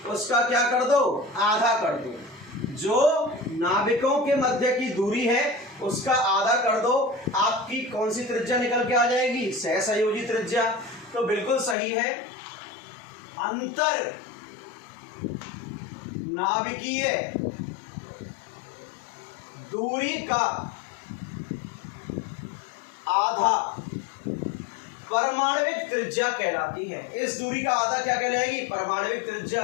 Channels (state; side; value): drops out; right; at 11.8 s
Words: उसका क्या कर दो, आधा कर दो। जो नाभिकों के मध्य की दूरी है उसका आधा कर दो, आपकी कौन सी त्रिज्या निकल के आ जाएगी, सहसंयोजी त्रिज्या। तो बिल्कुल सही है, अंतर नाभिकीय दूरी का आधा परमाणविक त्रिज्या कहलाती है। इस दूरी का आधा क्या कहलाएगी, परमाणविक त्रिज्या।